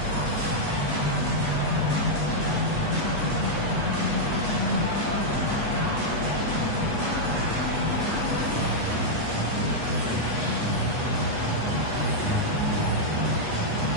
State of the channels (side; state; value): left; late; 8.2 ms